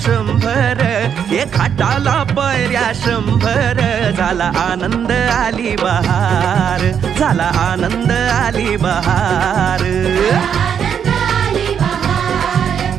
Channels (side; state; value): left; quieter; 8.0 dB